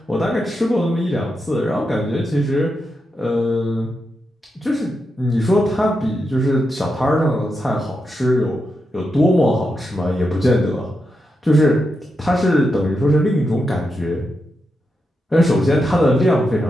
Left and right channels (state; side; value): normal; both; correlation 0.86